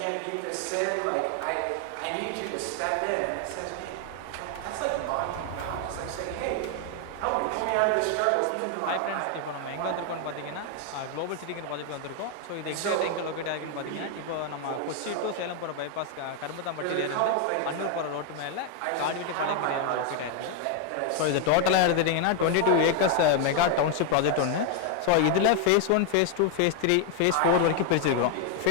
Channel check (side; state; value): both; different; correlation 0.01